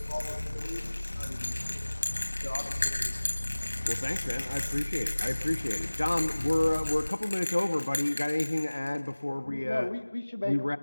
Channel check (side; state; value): both; inverted; correlation -1.00